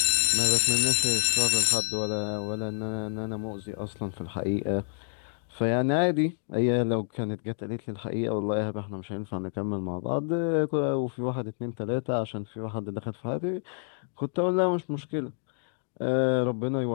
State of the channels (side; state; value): right; silent; digital silence